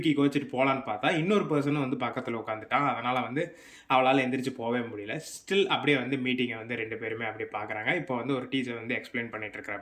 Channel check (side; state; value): both; identical; correlation 1.00